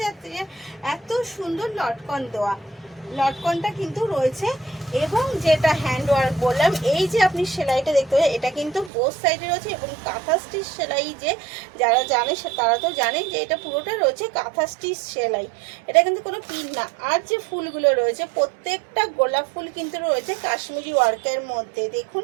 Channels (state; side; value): drops out; left; at 8.9 s